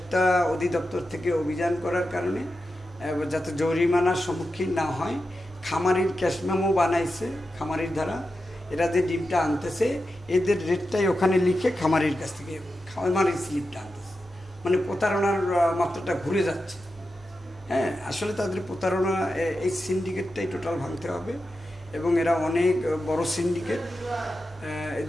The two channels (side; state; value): both; normal; correlation 0.90